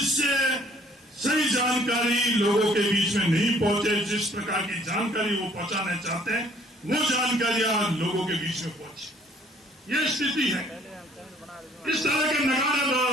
सही जानकारी लोगों के बीच में नहीं पहुंचे। जिस प्रकार की जानकारी वो पहुंचाना चाहते हैं वो जानकारियां लोगों के बीच में पहुंचे। ये स्थिति है। इस तरह के नगाड़े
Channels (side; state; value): both; normal; correlation 0.59